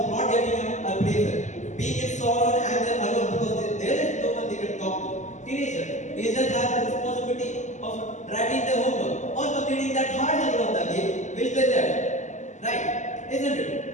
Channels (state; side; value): late; right; 0.34 ms